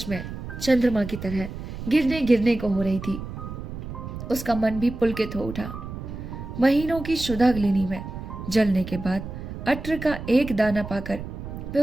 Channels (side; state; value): right; noise; rumble, 9 dB below the sound